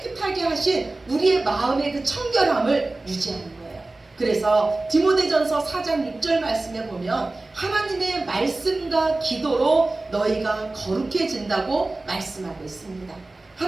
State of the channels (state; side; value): quieter; left; 3.0 dB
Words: 하신 우리의 마음의 그 청결함을 유지하는 거예요. 그래서 디모데전서 4장 6절 말씀에 보면 하나님의 말씀과 기도로 너희가 거룩해진다고 말씀하고 있습니다.